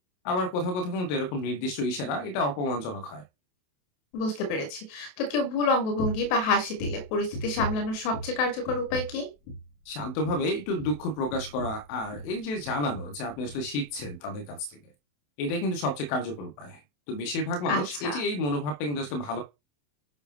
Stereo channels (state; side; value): late; right; 27 ms